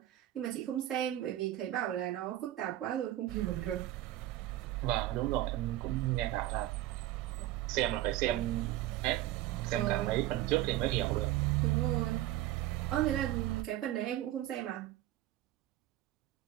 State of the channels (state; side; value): quieter; left; 14.4 dB